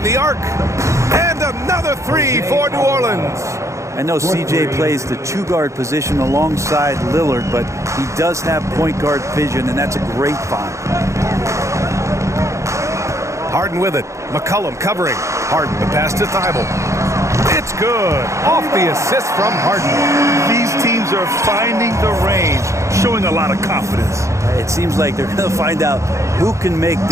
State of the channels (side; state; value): left; late; 0.14 ms